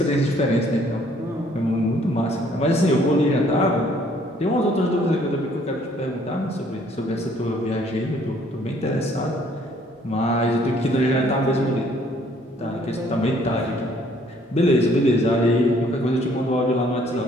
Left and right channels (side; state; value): both; normal; correlation 0.62